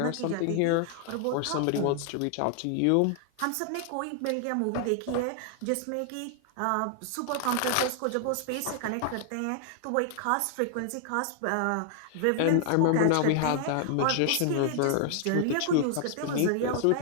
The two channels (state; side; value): different; both; correlation 0.00